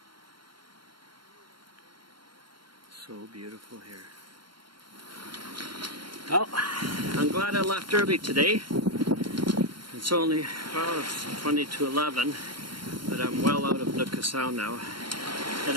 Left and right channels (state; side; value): late; left; 0.72 ms